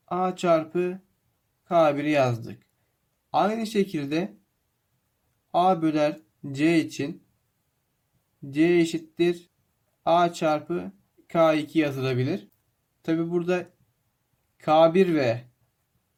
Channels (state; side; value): identical; both; correlation 1.00